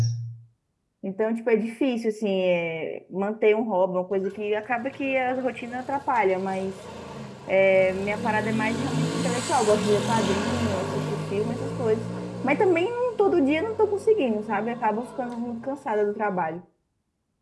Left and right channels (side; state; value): both; identical; correlation 1.00